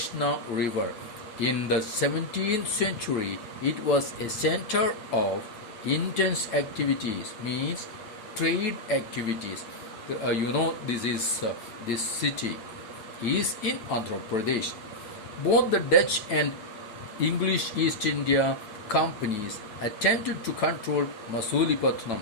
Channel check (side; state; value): right; late; 8.4 ms